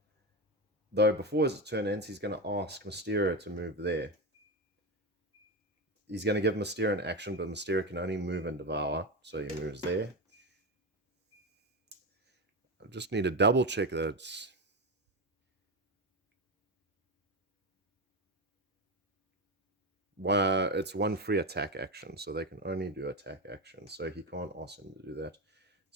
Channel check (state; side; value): normal; both; correlation 0.16